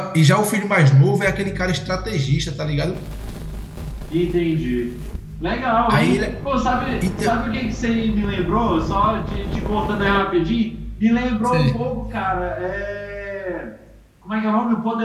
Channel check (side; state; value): both; identical; correlation 1.00